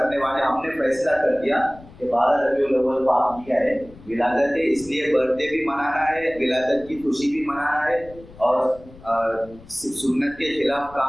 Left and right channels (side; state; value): left; noise; rumble, 21 dB below the sound